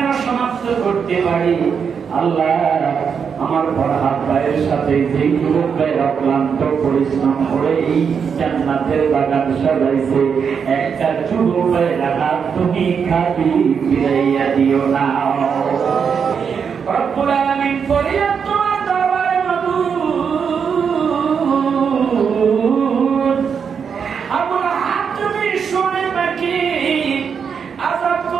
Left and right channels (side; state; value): left; quieter; 6.6 dB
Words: সমাপ্ত করতে পারি আল্লাহ। আমার ফরহাদ ভাইয়ের সাথে যে যুবক ভাই অক্লান্ত পরিশ্রম করে এই জান্নাতের বাগান সাজাইছে, একটা যুবক ভাই রাখা তুমি খাবি ফিরাইয়া দিও না। রব্বুল আলামিন ফরিয়াদ তোমার দরবারে মাবুদ, আমার হাত তুমি শুনে নাকি আযাব